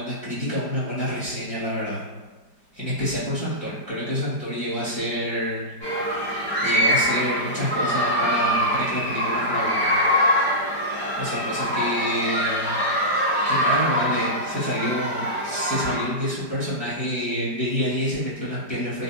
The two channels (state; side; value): late; right; 5.0 ms